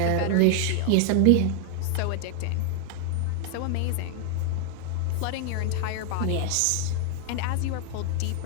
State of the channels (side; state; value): both; different; correlation 0.00